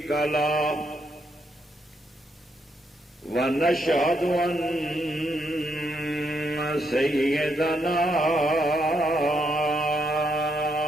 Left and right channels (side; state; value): both; normal; correlation 0.77